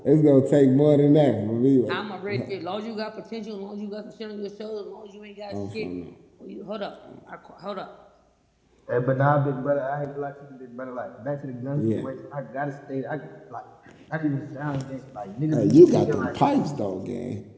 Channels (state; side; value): identical; both; correlation 1.00